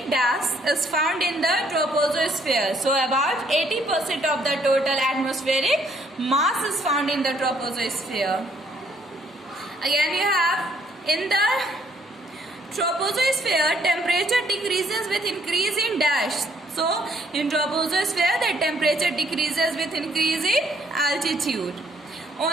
gas is found in the troposphere. So, about 80% of the total atmospheric mass is found in the troposphere. Again, you have in the troposphere, temperature decreases with increase in dash. So, in troposphere, the temperature decreases with increase in altitude.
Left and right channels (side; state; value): both; normal; correlation 0.66